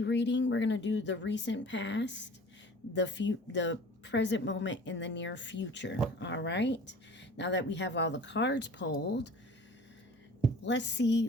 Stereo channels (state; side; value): normal; both; correlation 0.45